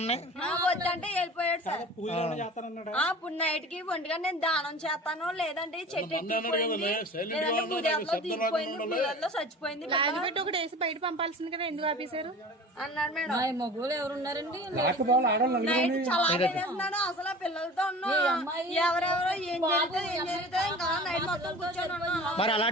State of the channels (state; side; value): normal; both; correlation 0.39